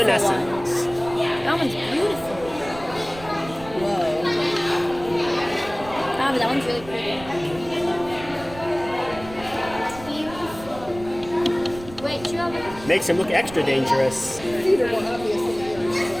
That one's beautiful. Whoa. But that one's really pretty. Wait, you have it? Makes him look extra dangerous. No,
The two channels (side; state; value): right; noise; rumble, 16 dB below the sound